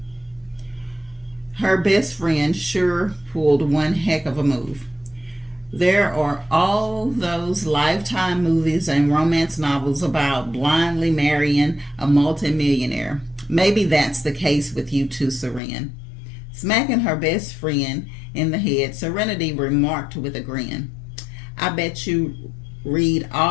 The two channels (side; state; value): right; drops out; at 15.6 s